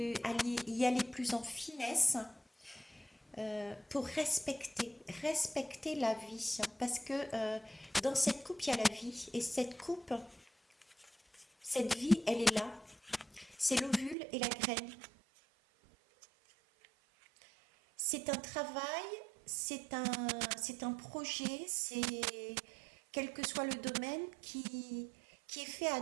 y aller plus en finesse, pour respecter la vie. Parce que dans cette coupe, il y a la vie. Et cette vie, elle est là. C'est l'ovule et la graine. C'est un travail, c'est un projet, c'est quel que soit le domaine qui est fait à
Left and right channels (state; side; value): drops out; left; at 14.2 s